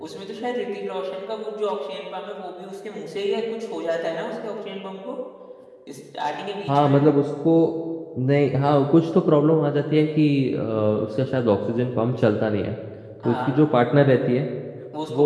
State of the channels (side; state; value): both; identical; correlation 1.00